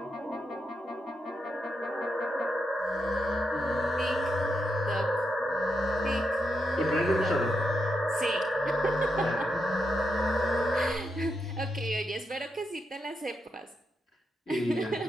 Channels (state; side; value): normal; both; correlation 0.84